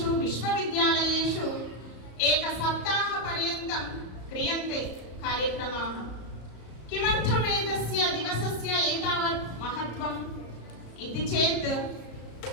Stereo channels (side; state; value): right; late; 34 ms